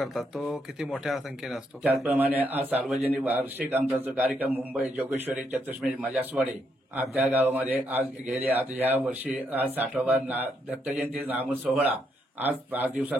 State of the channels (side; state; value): both; normal; correlation 0.77